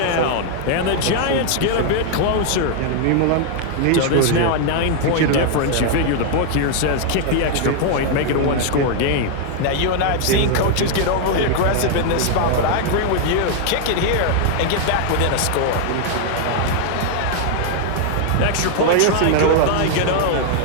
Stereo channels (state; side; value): different; both; correlation 0.00